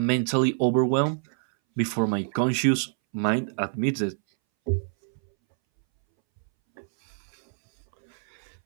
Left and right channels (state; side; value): silent; left; 61 dB below the other